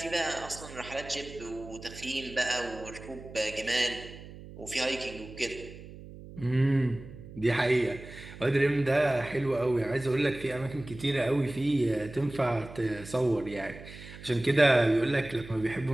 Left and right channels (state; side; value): noise; right; hum, 15 dB below the sound